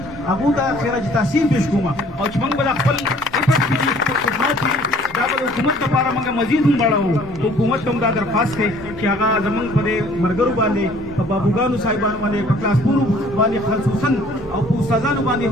अबू दा खैर तहसीन पेश कुमा और चमंग बला खपल इफत की खिदमत की दाबल हुकूमत का पारा मंगा मजीद हम बड़ा हो तो हुकूमत तुम दा दरखास्त है कि आगा जमंग पदे मरगरु बांधे बाबूगानु साहिबान वाले क्लासपुर वाले खसूसन और उस्तादान वाले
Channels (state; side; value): normal; both; correlation 0.56